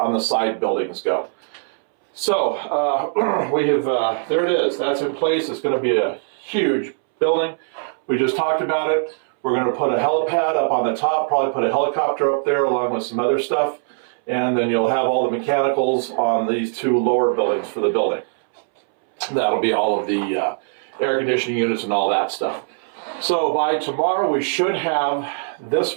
the side buildings go. So we have, there it is. That's in place. It's going to be a huge building. We just talked about it. We're going to put a helipad up on the top, probably put a helicopter up there along with some other stuff, and then you'll have all the mechanicals on these two lower buildings for the building. That'll be all of the air conditioning units and all that stuff. So by tomorrow we should have this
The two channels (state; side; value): silent; left; 65 dB below the other